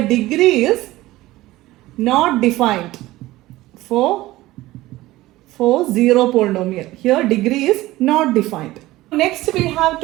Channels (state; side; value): quieter; left; 17.5 dB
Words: degree is not defined for 0 polynomial. Here degree is not defined. Next we have